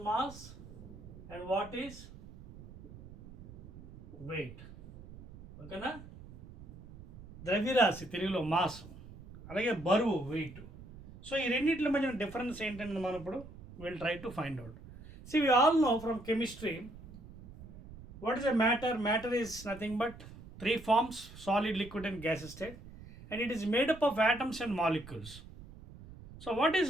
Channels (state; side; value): noise; right; rumble, 17 dB below the sound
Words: mass and what is weight. Okay na? ద్రవ్యరాశి తెలుగులో mass, అలాగే బరువు wait. So ఈ రెండింటి మధ్య difference ఏంటంటే మనం ఇప్పుడు we'll try to find out. See, we all know from chemistry what is a matter. Matter is nothing but three forms: solid, liquid and gas state, and it is made up of atoms and molecules. So what is